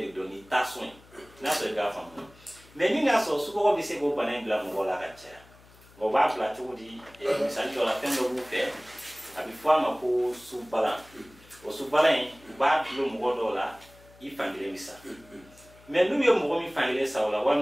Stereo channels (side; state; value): left; noise; hum, 25 dB below the sound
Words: de dɔn ni tension ye n'a sɔrɔ i k'a faamu mais ni n'a sɔrɔ sukaro bɛ se k'o bana in bila mɔgɔ la ka caya o b'a bila cogo di misali dɔ la fɛn dɔ b'u fɛ a bɛ fɔ a ma ko subalan o subalan in u b'a bilo mɔgɔ dɔw la i fankelen bɛ sa mais n'u ye mɔgɔ min fankelen sa o la